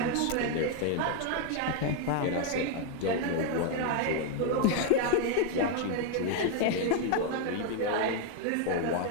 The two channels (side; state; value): both; different; correlation 0.01